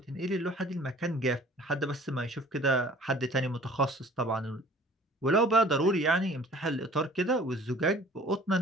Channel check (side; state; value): both; normal; correlation 0.50